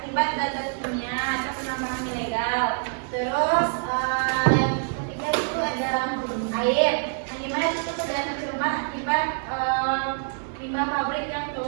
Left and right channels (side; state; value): left; silent; 61 dB below the other